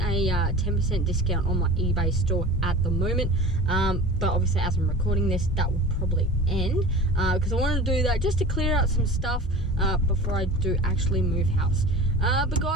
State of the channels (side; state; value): both; normal; correlation 0.38